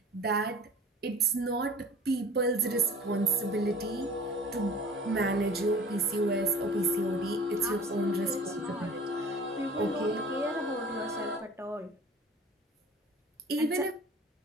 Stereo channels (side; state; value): both; normal; correlation 0.44